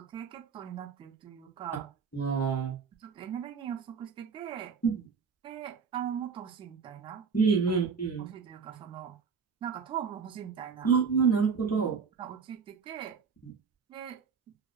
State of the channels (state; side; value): quieter; left; 5.9 dB